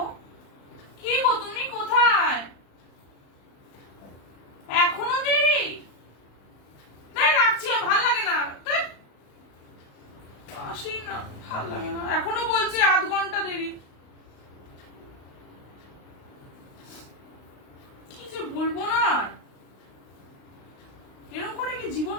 কি গো, তুমি কোথায়? এখনো দেরি? রাখছি, ভাল লাগে না। আসি না, ভাল লাগে না। এখনো বলছি 8 ঘন্টা দেরি। কি যে বলবো না, এরকম করে কি জীবন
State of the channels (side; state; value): right; late; 35 ms